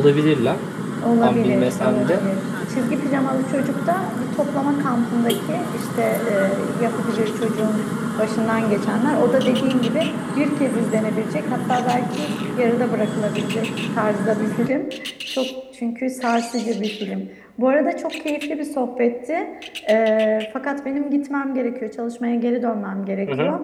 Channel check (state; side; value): identical; both; correlation 1.00